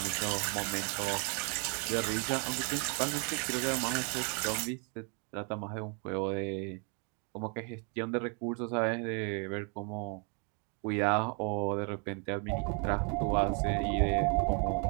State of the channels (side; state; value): left; quieter; 37.3 dB